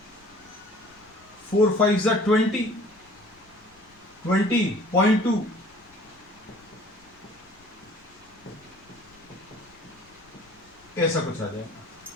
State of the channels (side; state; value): left; noise; rumble, 29 dB below the sound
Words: 4 5 जा 20, 20.2, ऐसा कुछ आ जाएगा